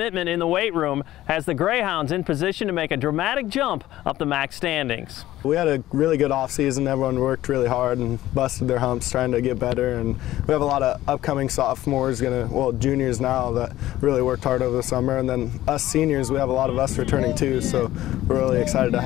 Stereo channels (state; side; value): quieter; right; 14.8 dB